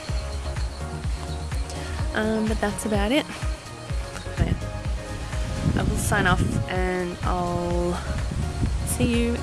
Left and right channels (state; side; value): identical; both; correlation 1.00